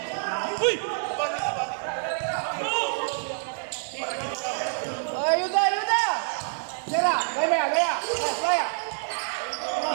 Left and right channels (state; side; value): silent; left; digital silence